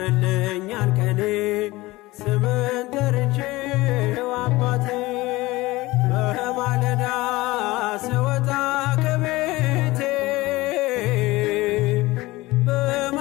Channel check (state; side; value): quieter; right; 19.9 dB